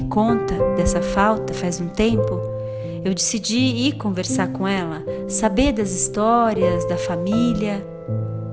conta dessa falta faz um tempo, eu decidi ir conversar com ela, saber das histórias, da família.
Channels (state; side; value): identical; both; correlation 1.00